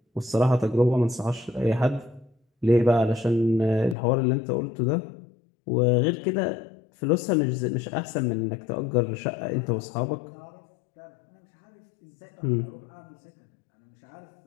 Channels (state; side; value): drops out; right; at 4.0 s